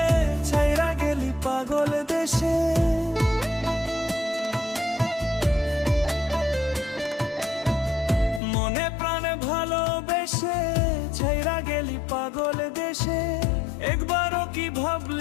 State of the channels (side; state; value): right; drops out; at 8.4 s